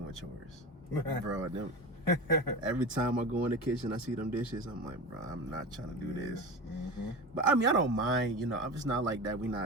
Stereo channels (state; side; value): normal; both; correlation 0.28